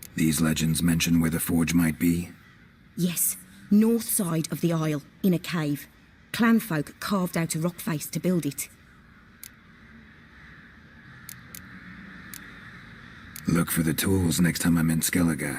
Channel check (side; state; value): both; identical; correlation 1.00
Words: These legends mention where the forge might be? Yes, north side of the isle, in a cave. Clanfolk carved out a rock face to build it. Look for the tools next time I'm in